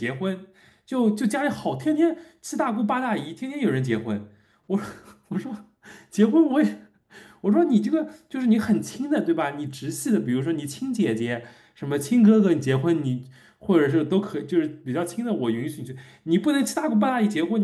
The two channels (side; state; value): both; identical; correlation 1.00